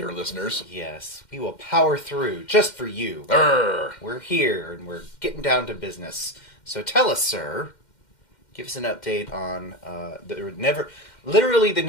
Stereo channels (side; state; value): right; late; 2.1 ms